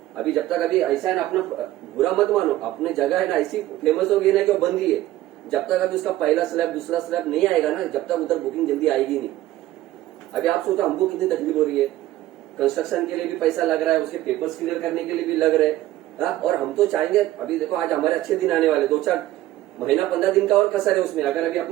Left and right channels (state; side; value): quieter; left; 15.1 dB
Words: अभी जब तक, अभी ऐसा है ना, अपना बुरा मत मानो, अपने जगह है ना ऐसी फेमस हो गई ना कि वो बंद ही है। जब तक अभी उसका पहला स्लैब दूसरा स्लैब नहीं आएगा ना, जब तक उधर बुकिंग जल्दी आएगी नहीं। अभी आप सोचो हमको कितनी तकलीफ हो रही है, कंस्ट्रक्शन के लिए भी पैसा लग रहा है, उसके पेपर्स क्लियर करने के लिए भी लग रहे हैं, और हम तो चाहेंगे, अभी देखो आज हमारे अच्छे दिन आने वाले, 2-4 महीना 15 दिन का और कसर है उसमें। अगर अभी